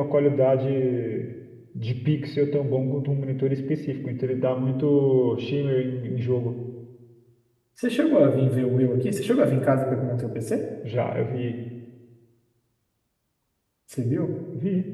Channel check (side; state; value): both; identical; correlation 1.00